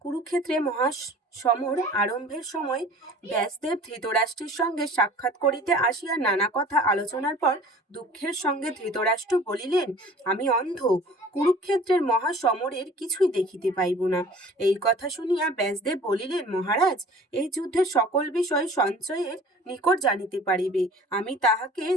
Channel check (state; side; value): normal; both; correlation 0.46